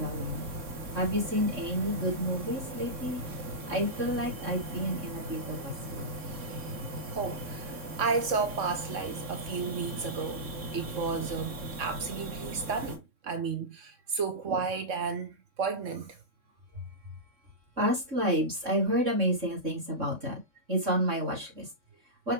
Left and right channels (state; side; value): late; left; 3.6 ms